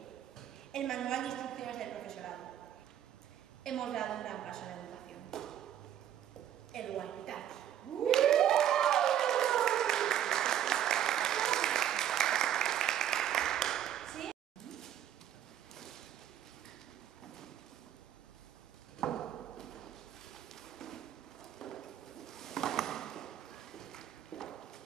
El manual de instrucciones del profesorado. Hemos dado un gran paso en la educación. El Walkie-Talkie. ¿Sí?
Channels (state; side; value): quieter; left; 10.8 dB